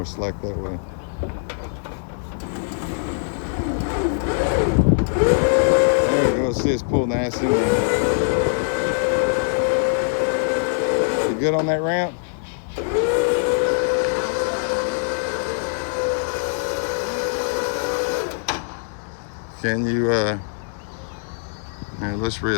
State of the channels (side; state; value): right; silent; digital silence